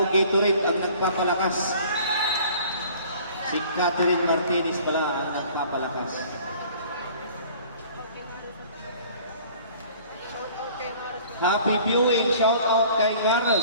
Gatorade ang nagpapalakas. Si Catherine Martinez pala ang nagpapalakas. Happy viewing. Shout out kay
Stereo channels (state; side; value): inverted; both; correlation -0.51